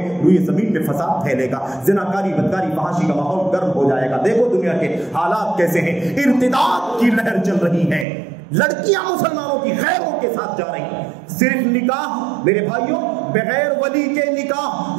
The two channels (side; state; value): left; drops out; at 8.1 s